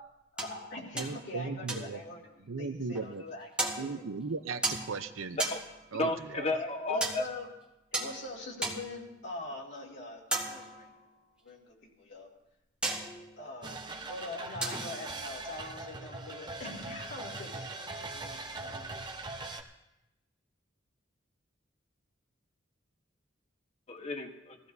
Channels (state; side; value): normal; both; correlation 0.19